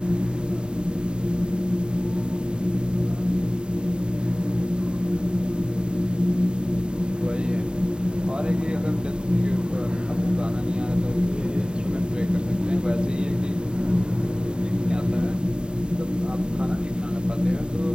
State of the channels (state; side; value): late; left; 0.049 ms